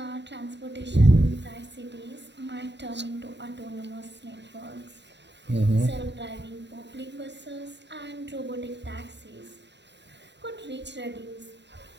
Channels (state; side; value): late; left; 0.51 ms